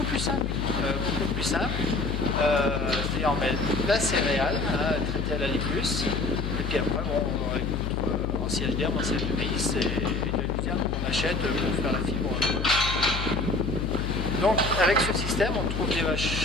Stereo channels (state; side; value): noise; left; hum, 3 dB below the sound